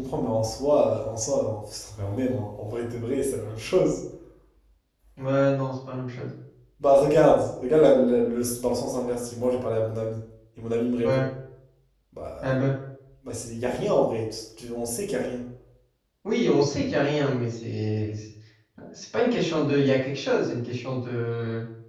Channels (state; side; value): identical; both; correlation 1.00